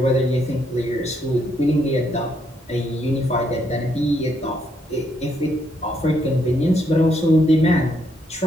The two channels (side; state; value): both; normal; correlation 0.74